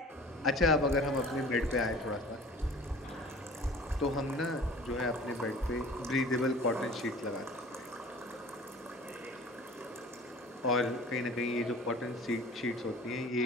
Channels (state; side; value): normal; both; correlation 0.44